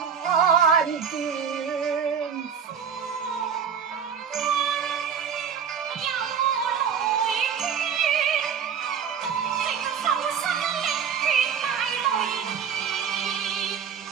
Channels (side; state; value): left; quieter; 7.4 dB